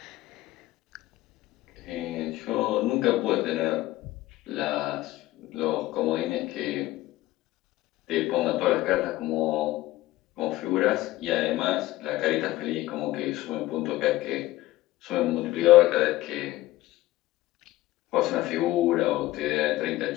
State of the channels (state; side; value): quieter; right; 17.0 dB